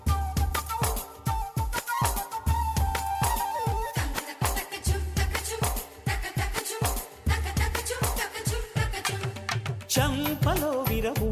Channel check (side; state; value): both; identical; correlation 1.00